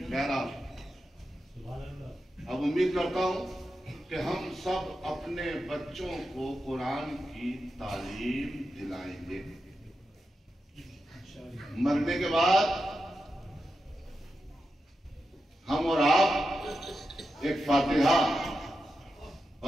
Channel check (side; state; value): both; normal; correlation 0.89